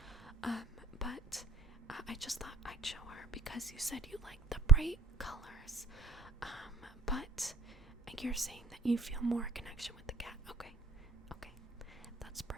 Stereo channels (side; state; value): left; quieter; 4.2 dB